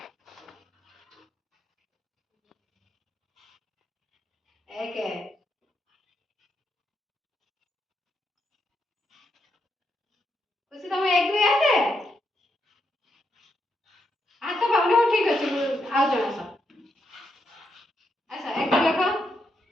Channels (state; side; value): normal; both; correlation 0.81